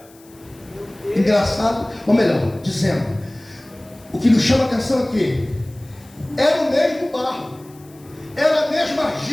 Engraçado, ou melhor, dizendo, o que nos chama a atenção aqui, era o mesmo barro, era a mesma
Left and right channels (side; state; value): left; noise; hiss, 27 dB below the sound